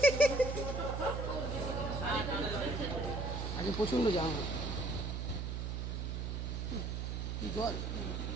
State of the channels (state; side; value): noise; right; hum, 2 dB below the sound